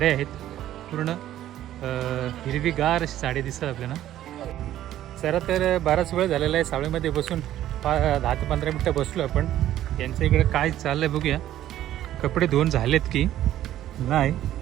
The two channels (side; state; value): left; quieter; 12.7 dB